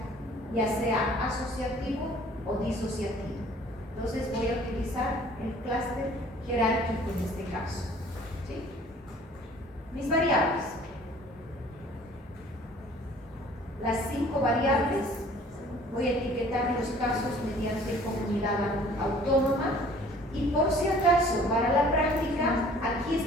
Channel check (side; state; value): both; normal; correlation 0.52